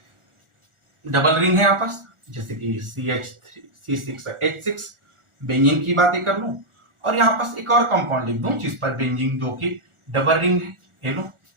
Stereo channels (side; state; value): left; late; 1.4 ms